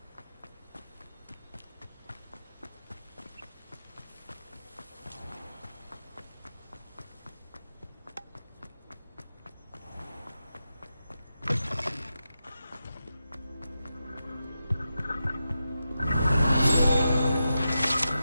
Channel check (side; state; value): both; inverted; correlation -0.89